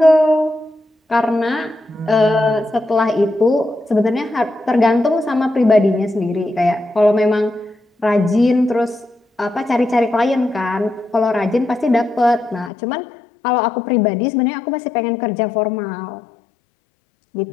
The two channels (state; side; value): drops out; right; at 12.7 s